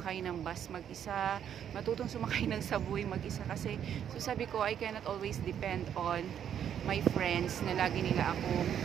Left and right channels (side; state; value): left; quieter; 9.2 dB